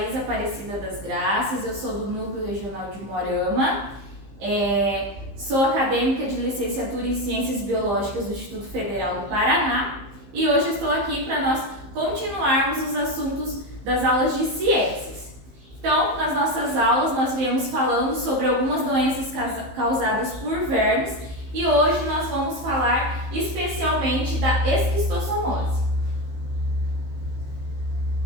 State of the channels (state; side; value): late; left; 15 ms